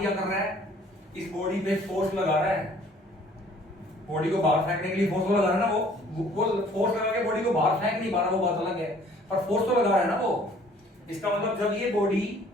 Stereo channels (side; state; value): both; normal; correlation 0.56